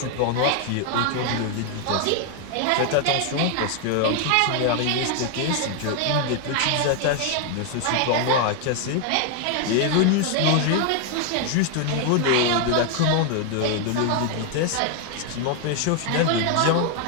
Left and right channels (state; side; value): different; both; correlation 0.00